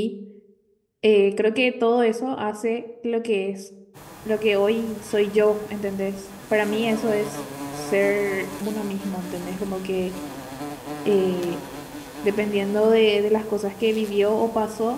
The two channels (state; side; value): identical; both; correlation 1.00